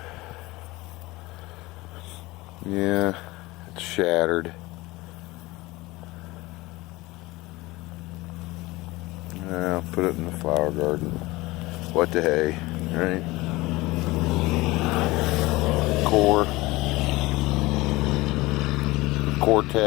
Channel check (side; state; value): right; quieter; 20.8 dB